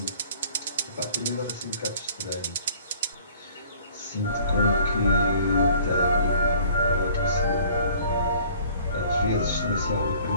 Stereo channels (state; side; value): inverted; both; correlation -0.54